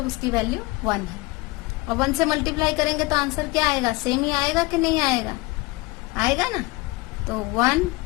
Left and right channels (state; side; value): quieter; right; 22.8 dB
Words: उसकी वैल्यू 1 है। और 1 से मल्टीप्लाई करेंगे तो आंसर क्या आएगा, सेम ही आएगा कि नहीं आएगा, आएगा ना। तो